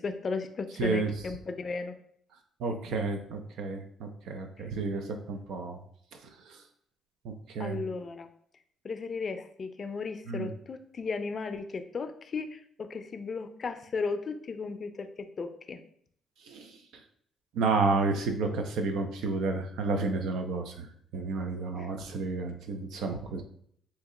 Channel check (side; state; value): both; normal; correlation 0.48